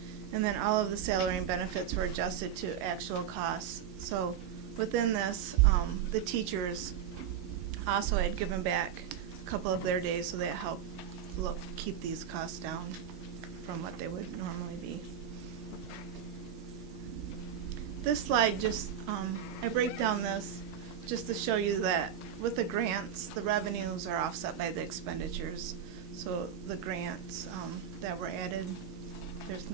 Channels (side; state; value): left; quieter; 9.0 dB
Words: And then all of the salary and benefits were adjusted to actual costs. So within this, the teachers also had given back a couple of their days, so that helped keep these costs down from what they would normally be. This slide just, I break down this just to show you that with the grants, the revenues are offset by the expenditures. So the grants that were added,